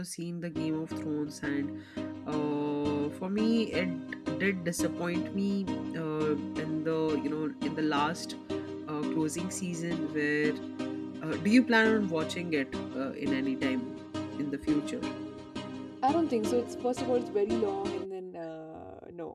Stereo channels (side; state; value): both; identical; correlation 1.00